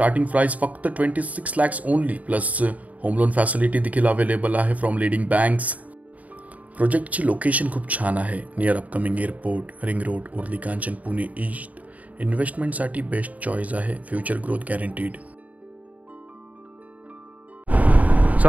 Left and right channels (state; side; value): late; left; 0.071 ms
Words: price फक्त 26 lakhs only, plus home loan facility देखील अवेलेबल आहे फ्रॉम लीडिंग बँक्स। प्रोजेक्टची लोकेशन खूप छान आहे, near upcoming airport, ring road, Uruli Kanchan, Pune east इन्व्हेस्टमेंटसाठी बेस्ट चॉईस आहे, फ्युचर ग्रोथ गॅरंटीड.